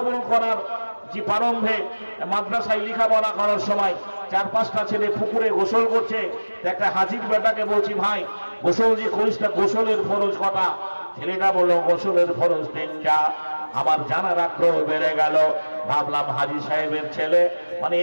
করার যে প্রারম্ভে মাদ্রাসায় লেখাপড়া করার সময় 4-5টা ছেলে পুকুরে গোসল করছে। একটা হাজির বেটাকে বলছি ভাই গোসল যে করিস না, গোসলের ফরজ কটা? ছেলেটা বললো গোসলের ফরজ 3টা। আমার জানার আগ্রহ বেড়ে গেল। ভাবলাম হাজী সাহেবের ছেলে, মানে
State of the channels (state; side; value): inverted; both; correlation -1.00